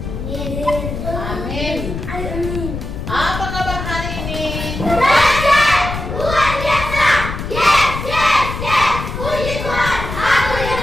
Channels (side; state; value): left; noise; rumble, 6 dB below the sound